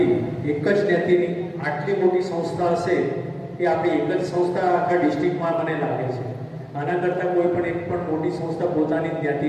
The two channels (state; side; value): identical; both; correlation 1.00